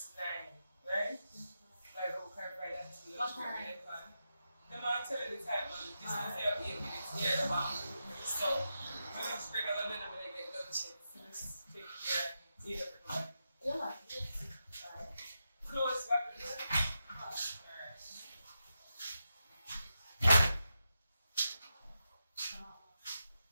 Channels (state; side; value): inverted; both; correlation -0.88